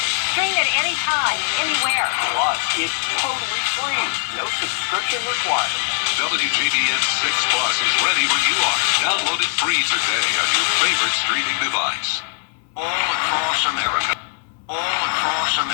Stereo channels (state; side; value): silent; right; digital silence